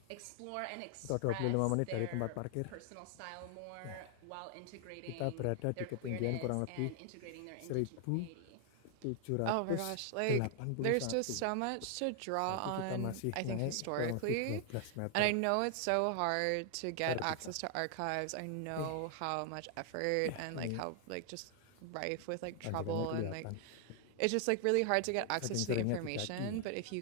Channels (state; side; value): different; both; correlation 0.00